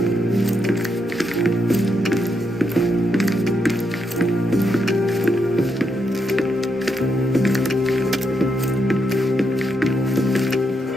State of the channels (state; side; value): normal; both; correlation 0.81